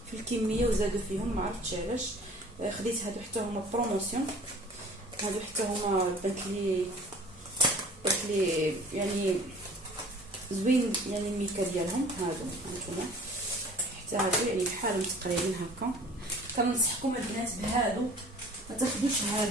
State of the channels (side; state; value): both; normal; correlation 0.48